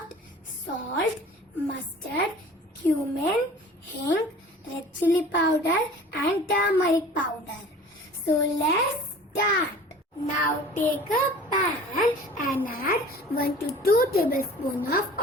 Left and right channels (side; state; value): both; normal; correlation 0.44